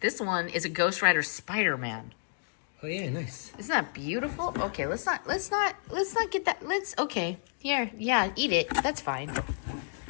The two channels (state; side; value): silent; right; 57 dB below the other